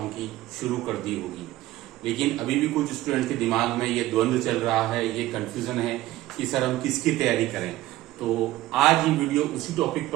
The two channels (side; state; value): left; quieter; 16.3 dB